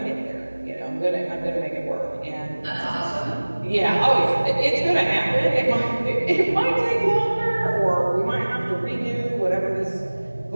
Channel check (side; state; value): both; inverted; correlation -1.00